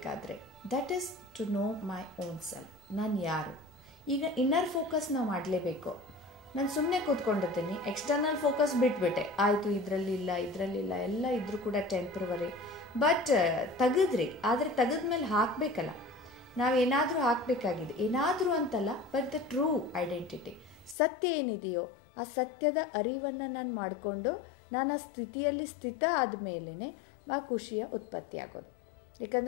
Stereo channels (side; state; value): right; drops out; at 21.0 s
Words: That is to know my own self. ನಾನು ಯಾರು? ಈಗ ಇನ್ನರ್ ಫೋಕಸ್ ನಾವು ಮಾಡಲೇಬೇಕು. ನಾನು ಸುಮ್ಮನೆ ಕೂತ್ಕೊಂಡಿದ್ದೀನಿ, ಎಕ್ಸ್ಟರ್ನಲ್ ಫೋಕಸ್ ಬಿಟ್ಬಿಟ್ಟೆ, ಆಯಿತು ಇದರಲ್ಲಿಲ್ಲ ಎಲ್ಲ ಇದ್ರೂ ಕೂಡ ಟೆಂಪ್ರವರಿ. ಬಟ್ ತೆಗೆದ್ರಿ, ಆದರೆ ತೆಗೆದ್ಮೇಲೆ ಹಾಕಬೇಕಲ್ಲ, ನಾವೇನಾದರೂ ಹಾಕಬೇಕಾಗಿದೆ, ಏನಾದರೂ ಅಂತಲ್ಲ, ಬಟ್ ದ ಟ್ರೂ ಐಡೆಂಟಿಟಿ, ಸತ್ಯ ಏನಿದೆಯೋ ಆ ಸತ್ಯದ ಅರಿವನ್ನು ನಾನು ಮಾಡಿಕೊಂಡು ನಾನು ಆ ಸ್ಥಿತಿಯಲ್ಲಿ ಸ್ಥಿತ ಆದಮೇಲೆ ಆ ಖುಷಿಯ ಉತ್ಪತ್ತಿ ಆಗೋದು.